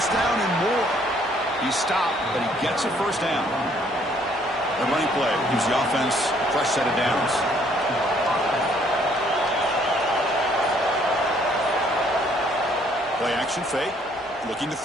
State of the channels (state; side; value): normal; both; correlation 0.64